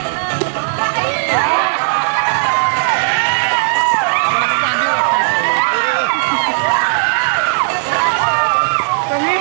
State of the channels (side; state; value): left; silent; digital silence